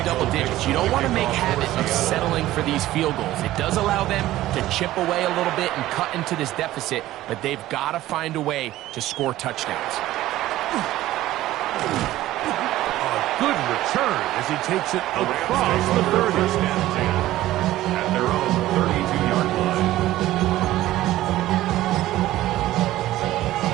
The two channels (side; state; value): left; quieter; 15.3 dB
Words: double digits, you don't want to make habit of settling for these field goals. It does allow them to chip away a little bit and cut into this deficit, but they've got to find a way to score touchdowns. A good return as he takes it across the 30. At their own 32-yard line.